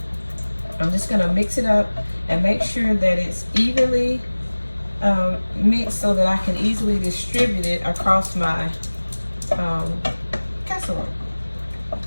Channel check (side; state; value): both; inverted; correlation -1.00